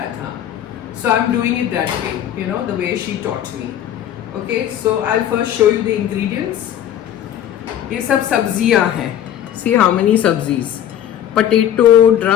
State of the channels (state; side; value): quieter; right; 10.8 dB